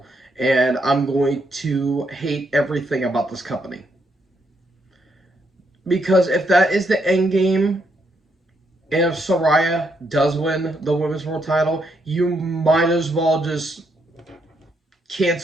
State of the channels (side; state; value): both; normal; correlation 0.76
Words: And I'm going to hate everything about this company. Because if that is the end game, and if Saraya does win the women's world title, you might as well just